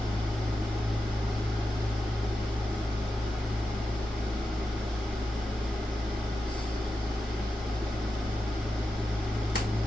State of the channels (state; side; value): normal; both; correlation 0.90